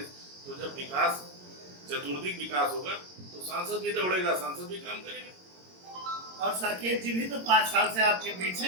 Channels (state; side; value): late; left; 22 ms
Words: तो जब विकास चतुर्दिक विकास होगा तो सांसद भी दौड़ेगा, सांसद भी काम करेगा। और साकेत जी भी तो 5 साल से आपके बीच